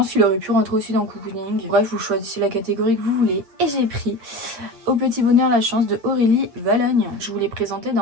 qu'il aurait pu rentrer aussi dans Cocooning. Bref, vous choisissez la catégorie que vous voulez. Et j'ai pris Au petit bonheur la chance de Aurélie Valogne. Je vous l'ai présenté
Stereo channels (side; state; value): left; late; 8.7 ms